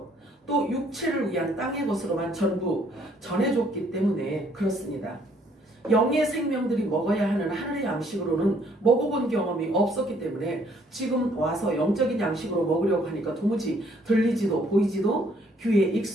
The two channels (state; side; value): normal; both; correlation 0.65